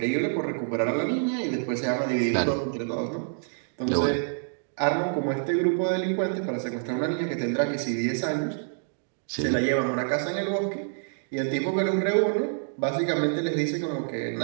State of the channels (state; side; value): silent; left; digital silence